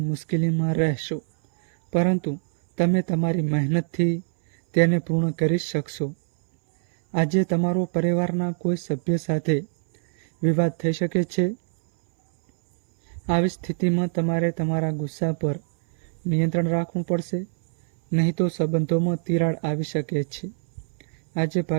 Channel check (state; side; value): silent; left; 63 dB below the other